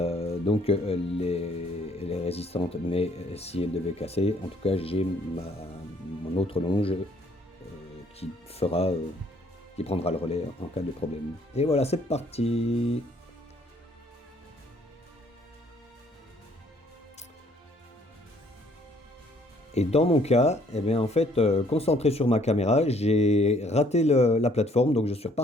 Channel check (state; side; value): normal; both; correlation 0.63